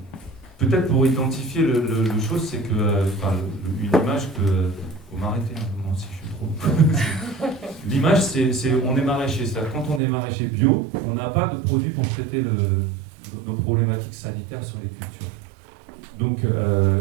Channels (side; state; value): left; drops out; at 10.0 s